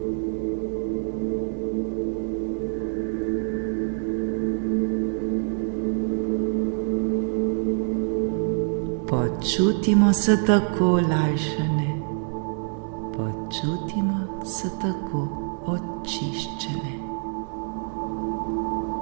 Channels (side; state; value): left; silent; 61 dB below the other